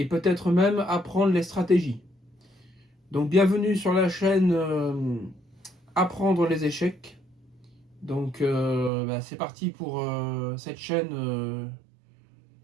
peut-être même apprendre les stratégies. Donc bienvenue sur la chaîne Apprendre les échecs. Donc c'est parti pour cette chaîne.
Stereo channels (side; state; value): left; drops out; at 8.9 s